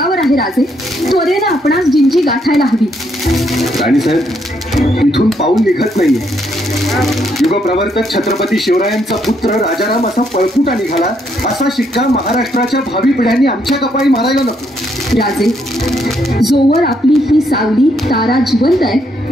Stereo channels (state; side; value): normal; both; correlation 0.74